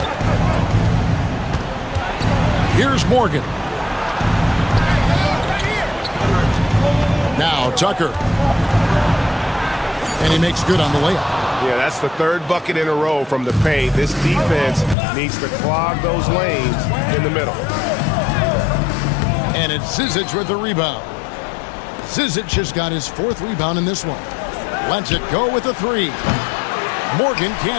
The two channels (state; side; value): drops out; right; at 15.0 s